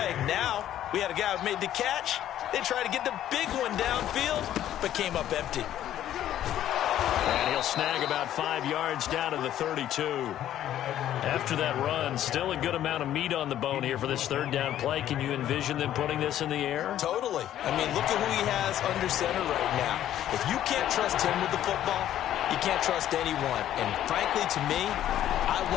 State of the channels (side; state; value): right; quieter; 11.8 dB